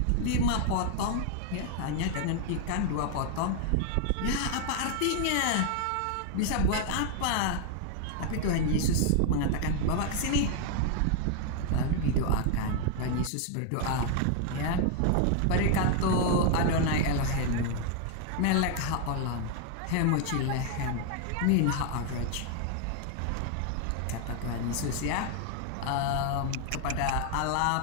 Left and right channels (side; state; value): both; different; correlation 0.00